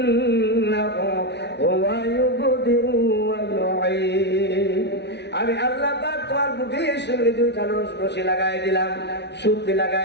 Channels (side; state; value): right; late; 0.50 ms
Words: হুয়া ইউবদিউ ওয়া ইউঈদ, আমি আল্লাহ পাক তোমার বুকের সঙ্গে দুইটা রশি লাগাই দিলাম, সুতি